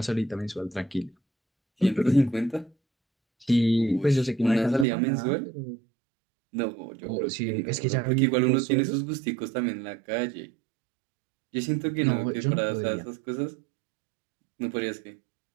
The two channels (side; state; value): left; drops out; at 4.9 s